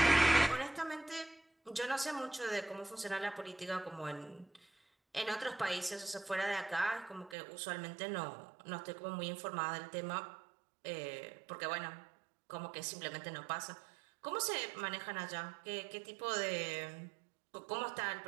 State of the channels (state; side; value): drops out; left; at 7.4 s